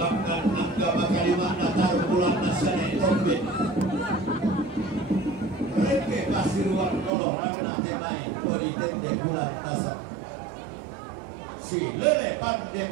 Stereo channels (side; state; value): left; drops out; at 7.1 s